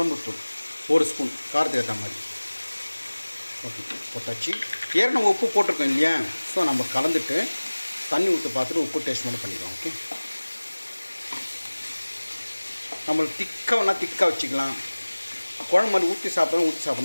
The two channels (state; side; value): inverted; both; correlation -1.00